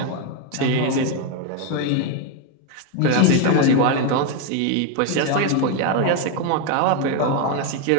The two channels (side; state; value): both; different; correlation 0.01